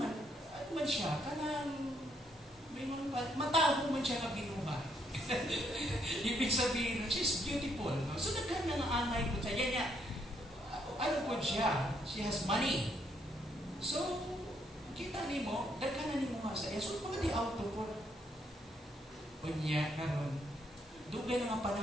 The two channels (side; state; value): both; normal; correlation 0.73